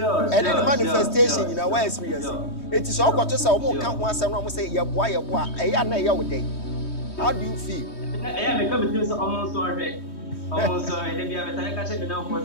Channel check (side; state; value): right; late; 3.2 ms